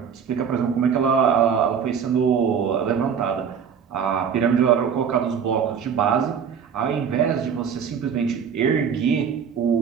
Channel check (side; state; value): left; quieter; 7.2 dB